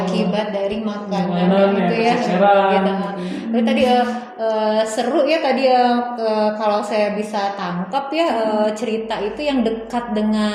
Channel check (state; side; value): identical; both; correlation 1.00